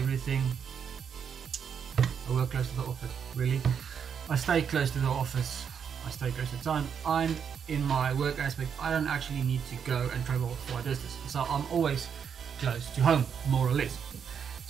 I work close to the office, really. I stay close to the office, I stay close to town. I'm in my work aspect, I don't actually need to go and travel for a distance. So I'm always close to home, more or less.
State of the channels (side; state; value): left; quieter; 7.3 dB